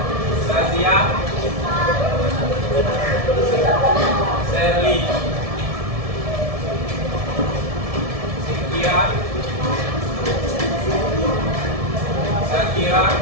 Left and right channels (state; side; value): late; left; 1.7 ms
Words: Sazia, Serli, Cynthia, Shakira,